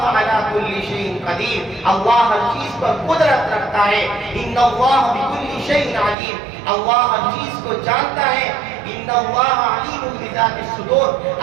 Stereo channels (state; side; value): drops out; left; at 6.2 s